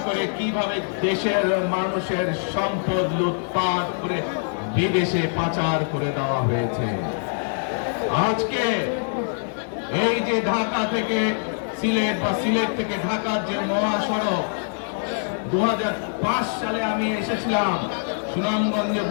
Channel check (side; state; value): right; silent; digital silence